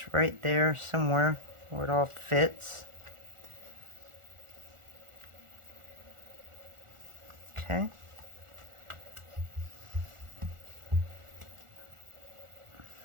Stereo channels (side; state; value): left; late; 1.4 ms